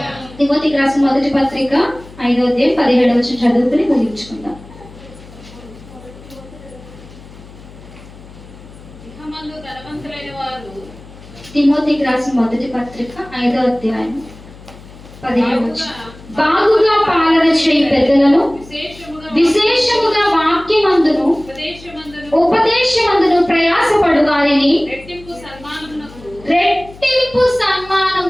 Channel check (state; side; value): noise; left; hum, 20 dB below the sound